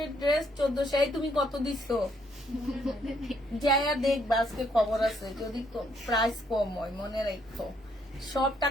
এর ড্রেস 1400। এই তুমি কত দিছো? যাইয়া দেখবা, আজকে খবর আছে। যদি প্রাইস কম হয় মনে রাখো, সব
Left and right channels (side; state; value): both; normal; correlation 0.70